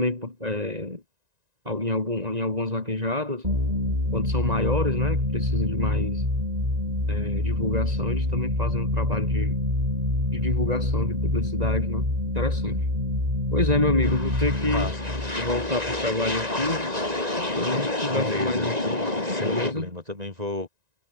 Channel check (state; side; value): late; left; 1.9 ms